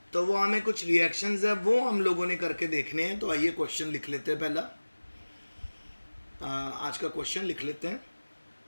तो वो हमें कुछ रिएक्शंस है वो हम लोगों ने करके देखने हैं। तो आइए क्वेश्चन लिख लेते हैं। पहला आज का क्वेश्चन लिख लेते हैं।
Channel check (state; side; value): inverted; both; correlation -1.00